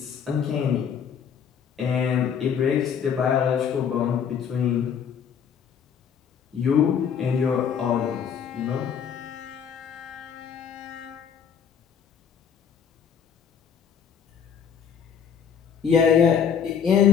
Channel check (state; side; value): quieter; right; 7.6 dB